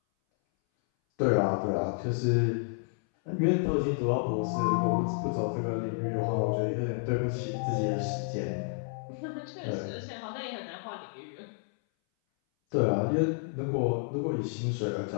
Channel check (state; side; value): silent; right; 58 dB below the other